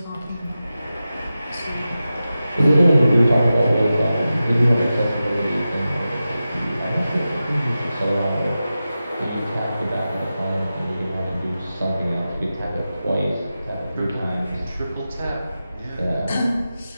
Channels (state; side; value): inverted; both; correlation -0.93